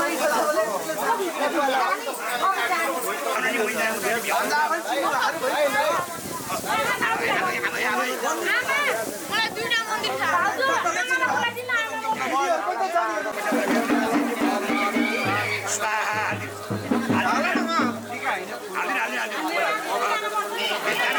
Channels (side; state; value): both; identical; correlation 1.00